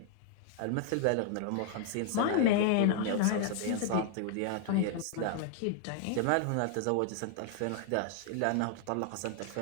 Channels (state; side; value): different; both; correlation 0.00